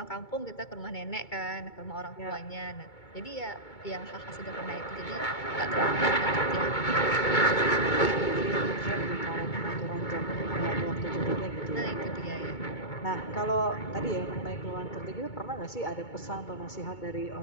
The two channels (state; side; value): late; right; 2.2 ms